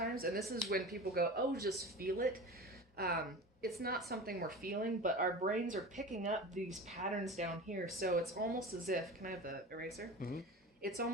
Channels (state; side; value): normal; both; correlation 0.32